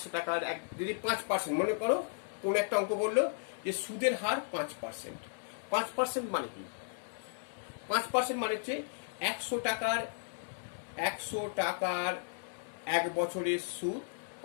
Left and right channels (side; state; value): right; silent; digital silence